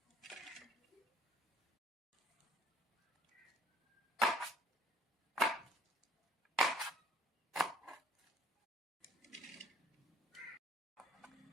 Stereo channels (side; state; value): both; normal; correlation 0.59